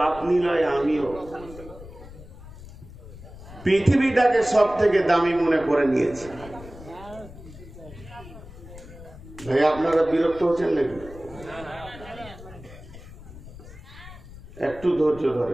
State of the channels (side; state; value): left; noise; rumble, 17 dB below the sound